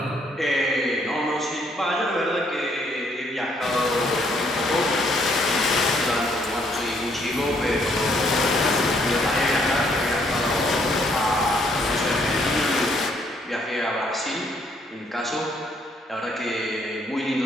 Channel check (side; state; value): both; normal; correlation 0.68